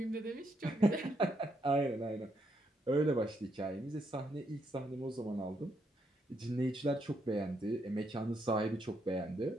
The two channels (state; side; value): normal; both; correlation 0.77